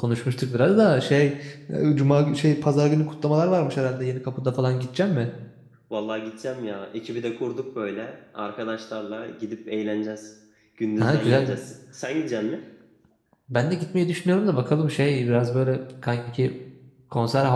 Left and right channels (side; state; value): both; identical; correlation 1.00